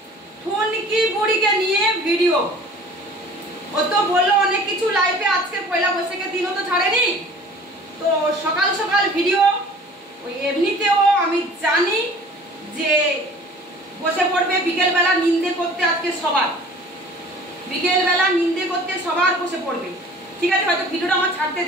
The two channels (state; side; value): normal; both; correlation 0.47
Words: ঠুনকি বুড়িকে নিয়ে ভিডিও। ও তো বললো অনেক কিছু লাইভে, আজকে পয়লা বৈশাখের দিনও তো ছাড়েনি, তো সকাল সকাল ভিডিও। ওই এমনিতেও আমি জানি যে বসে পড়বে বিকেলবেলা নিন্দে করতে, আজকে সবার বিকেলবেলা নিন্দে করতে সবার বসে পড়বে। ঠিক আছে, হয়তো ভিডিওটা আমার ছাড়তে